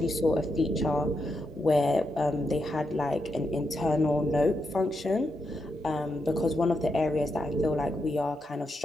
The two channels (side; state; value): both; normal; correlation 0.83